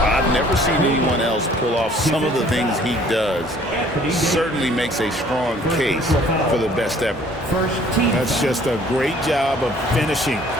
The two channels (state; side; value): normal; both; correlation 0.56